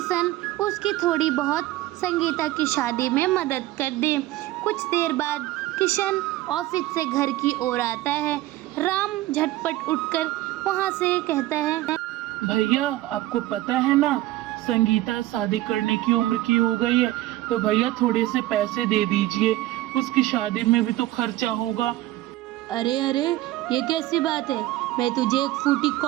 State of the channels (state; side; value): quieter; left; 16.2 dB